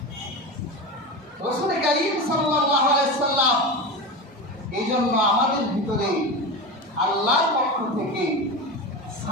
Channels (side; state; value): both; normal; correlation 0.24